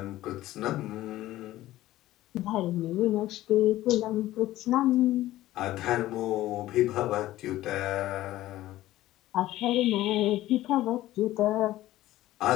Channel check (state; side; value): quieter; right; 15.4 dB